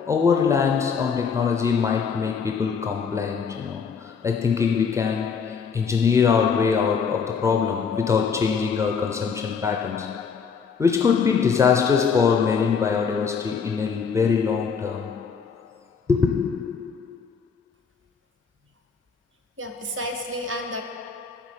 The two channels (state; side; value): quieter; right; 6.0 dB